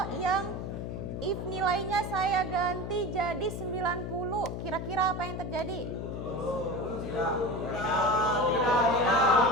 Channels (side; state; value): left; noise; hum, 5 dB below the sound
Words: yang if nilainya saya ganti jadi 90, kira-kira apa yang terjadi?